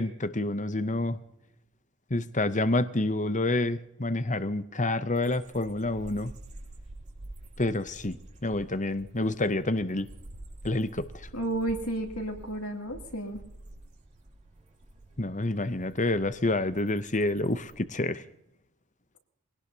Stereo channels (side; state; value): both; normal; correlation 0.52